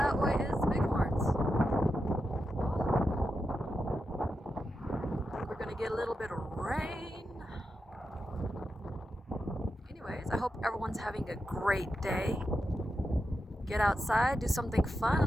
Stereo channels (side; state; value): both; normal; correlation 0.88